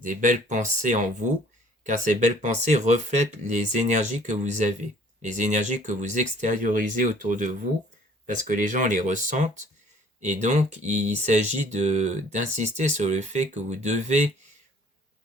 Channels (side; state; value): both; normal; correlation 0.55